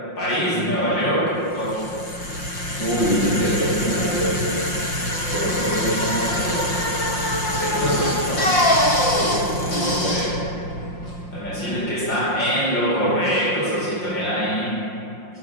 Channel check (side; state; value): right; late; 5.6 ms